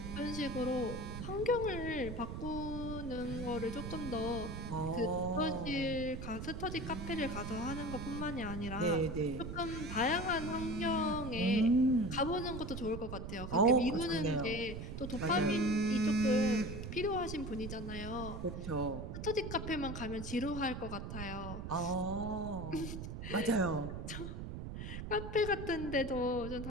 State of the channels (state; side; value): noise; right; rumble, 7 dB below the sound